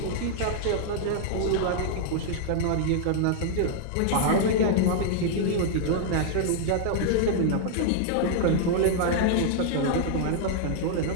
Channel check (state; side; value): different; both; correlation -0.01